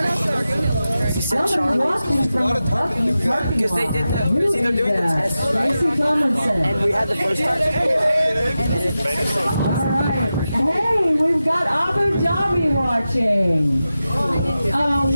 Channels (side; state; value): both; inverted; correlation -0.92